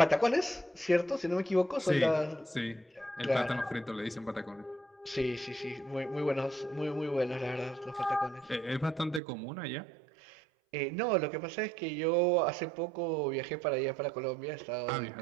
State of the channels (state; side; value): drops out; left; at 9.2 s